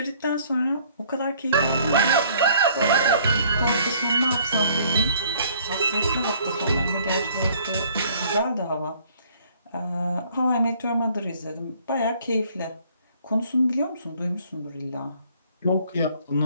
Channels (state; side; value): inverted; both; correlation -0.59